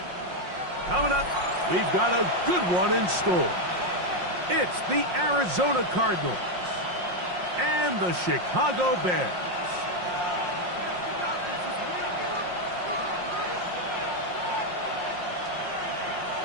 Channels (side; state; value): left; late; 5.6 ms